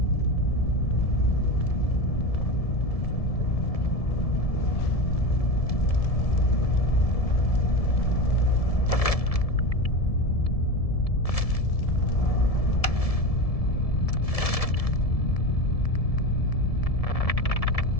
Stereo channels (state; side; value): late; right; 1.7 ms